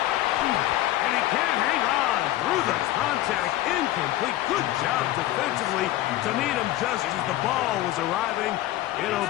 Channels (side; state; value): right; quieter; 15.1 dB